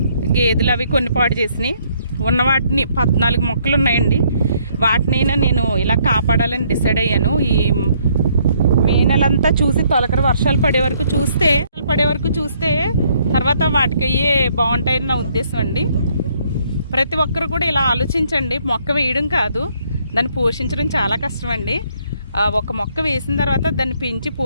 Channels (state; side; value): inverted; both; correlation -0.68